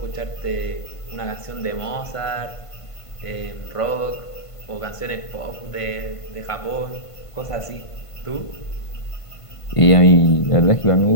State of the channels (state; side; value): late; right; 1.5 ms